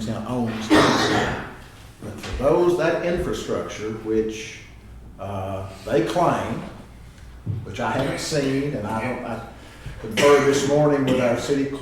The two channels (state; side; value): identical; both; correlation 1.00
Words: owns them. But for that infrastructure which they claim, which I haven't seen, and I conferred this morning with our city